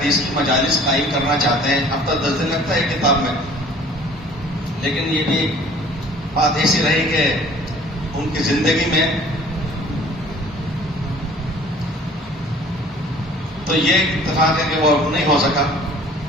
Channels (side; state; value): both; normal; correlation 0.51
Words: کی مجالس قائم کرنا چاہتے ہیں۔ ہفتہ 10 دن لگتا ہے کتاب میں، لیکن یہ بھی بات ایسی رہی کہ ان کی زندگی میں تو یہ اتفاق ہے کہ وہ نہیں ہو سکا۔